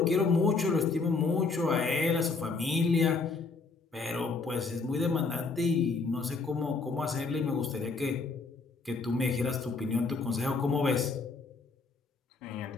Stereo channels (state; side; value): quieter; right; 4.2 dB